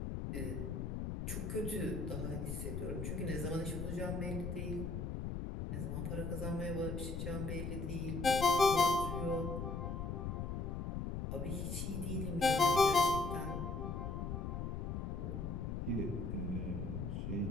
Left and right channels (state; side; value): noise; left; rumble, 3 dB below the sound